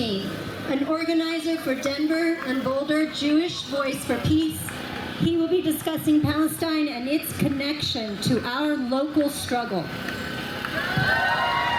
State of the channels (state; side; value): identical; both; correlation 1.00